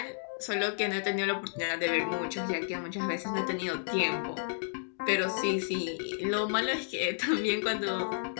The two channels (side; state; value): right; silent; digital silence